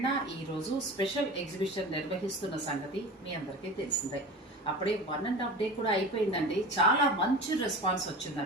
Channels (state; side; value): normal; both; correlation 0.34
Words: ఈ రోజు స్పెషల్ ఎగ్జిబిషన్ నిర్వహిస్తున్న సంగతి మీ అందరికీ తెలిసిందే. అప్పుడే 1.5 డే కూడా అయిపోయిందండి. చాలా మంచి రెస్పాన్స్